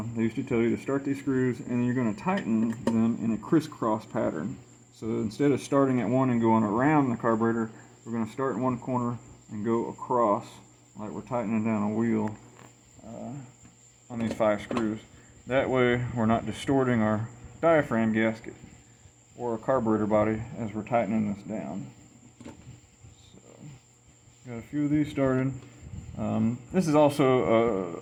used to tell you to start these screws and then you're going to tighten them in a crisscross pattern. So instead of starting at one and going around the carburetor, we're going to start in one corner and go across like we're tightening down a wheel on these 5 screws. That way we're not distorting our diaphragm gasket or our carburetor body as we're tightening this down. So, got a few of these started. This is also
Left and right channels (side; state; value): both; identical; correlation 1.00